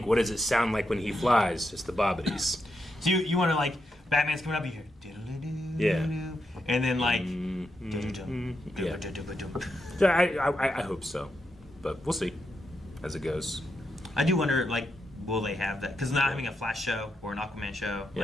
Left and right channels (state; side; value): normal; both; correlation 0.84